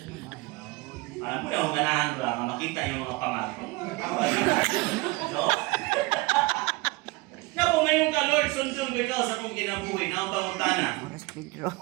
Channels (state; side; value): quieter; left; 23.3 dB